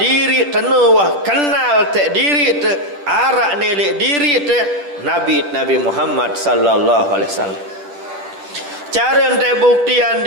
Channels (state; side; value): late; left; 10 ms